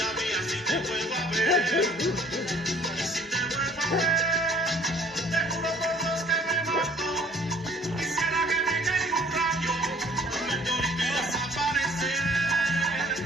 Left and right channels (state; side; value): normal; both; correlation 0.56